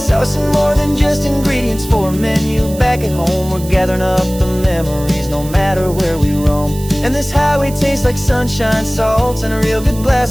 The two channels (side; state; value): right; noise; hiss, 16 dB below the sound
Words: more than just ingredients for a menu back at home. We're gathering up the memories no matter where we roam. And this highway tastes like sunshine, salt, and a real good